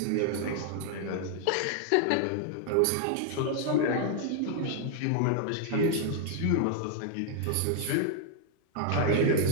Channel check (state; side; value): different; both; correlation 0.00